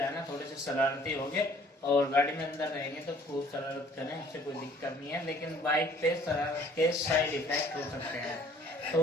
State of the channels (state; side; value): normal; both; correlation 0.56